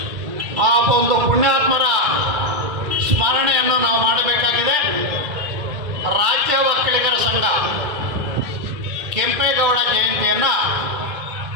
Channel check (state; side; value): late; left; 2.3 ms